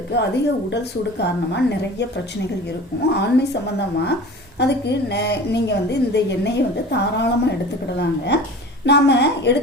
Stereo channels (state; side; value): normal; both; correlation 0.39